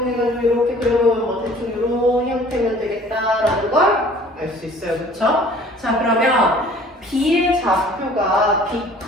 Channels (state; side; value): normal; both; correlation 0.51